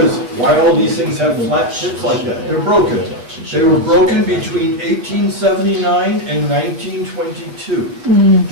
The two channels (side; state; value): left; late; 8.0 ms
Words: why all these things have flat tips like that? They're broken. They were broken between 1879 and 1922.